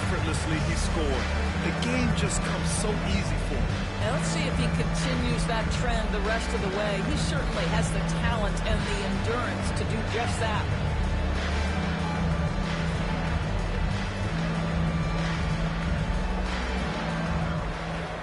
he scored. The game just comes so easy for him. And let's see if he continues that trend the rest of the way. He certainly has the talent and the endurance to do just that.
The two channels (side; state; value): both; identical; correlation 1.00